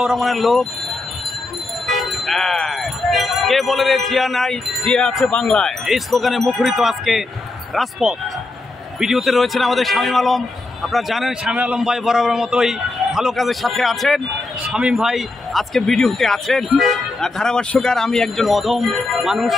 রহমানের লোক। কে বলে রে জিয়া নাই, জিয়া আছে বাংলায়, এই স্লোগানে মুখরিত আজকে রাজপথ। ভিডিওতে রয়েছেন আমাদের শামীম আলম। আপনারা জানেন শামীম আলম ভাই বরাবর মতোই ভালো কাজের সাথে আছেন। শামীম ভাই আজকে ভিডিওতে আছেন। ধারাভাষ্যকার আমি একজন অধম মানুষ,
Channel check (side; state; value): right; quieter; 3.1 dB